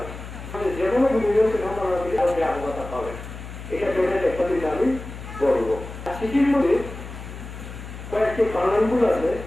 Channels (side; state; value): left; noise; hum, 11 dB below the sound